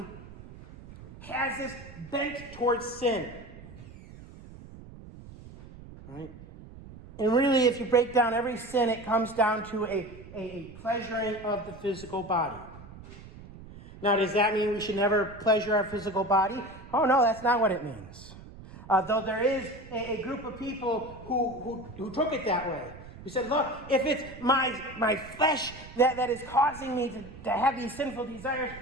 has this bent towards sin. All right? And really, if you break down every sin, it comes down to a pleasuring of the physical body. Now, does that mean we should never pleasure our physical body? Oh, no, that's not what it means. Though there is a group of people who took it that way. Who said, look, if it's my flesh that is causing me to have these sinful desires,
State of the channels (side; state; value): right; noise; rumble, 17 dB below the sound